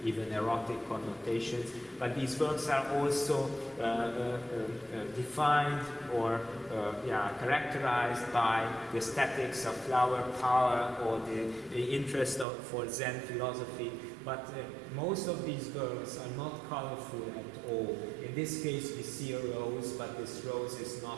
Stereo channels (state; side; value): drops out; left; at 12.5 s